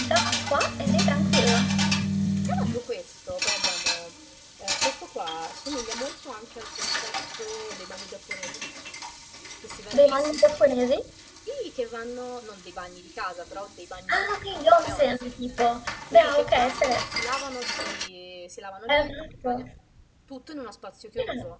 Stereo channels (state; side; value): identical; both; correlation 1.00